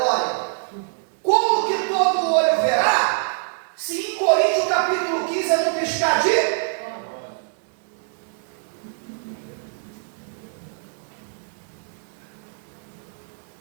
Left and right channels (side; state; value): left; silent; digital silence